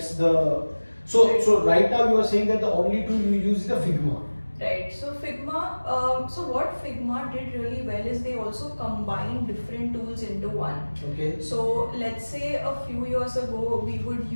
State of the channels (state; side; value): inverted; both; correlation -1.00